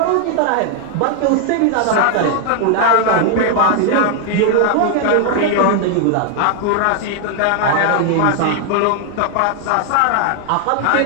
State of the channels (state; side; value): different; both; correlation 0.00